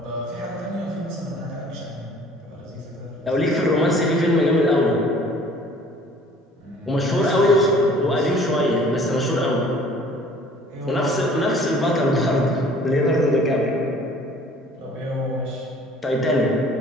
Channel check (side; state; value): both; normal; correlation 0.52